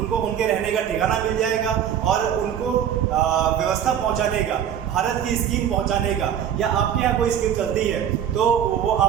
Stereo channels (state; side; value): quieter; left; 9.5 dB